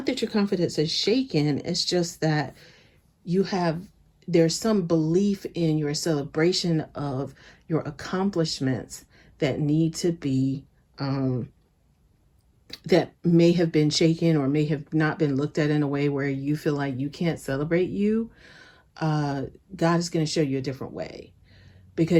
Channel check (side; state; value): both; identical; correlation 1.00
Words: that your confidence is shaken. It's just that there's some belief in your celebration of your accomplishments that need to be, that may have been shaken or may have not been looked at in a way where you feel like you can't celebrate you. God is going to show you a different way,